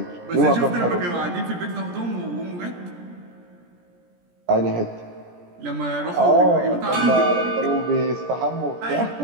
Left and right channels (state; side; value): late; left; 17 ms